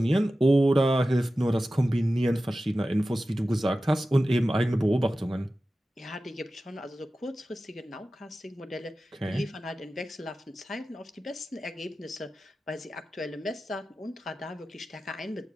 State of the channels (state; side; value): normal; both; correlation 0.94